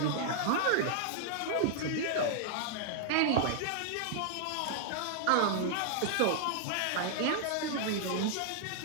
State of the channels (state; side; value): different; both; correlation -0.01